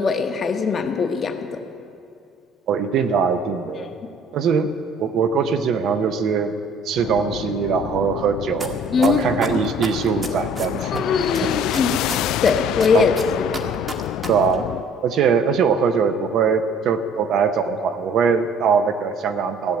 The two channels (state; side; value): normal; both; correlation 0.54